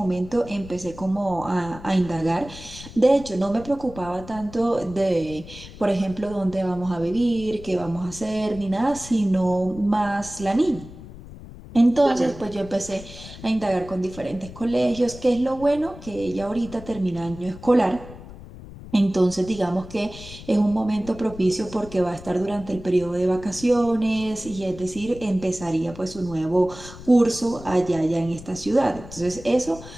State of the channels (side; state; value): left; noise; rumble, 16 dB below the sound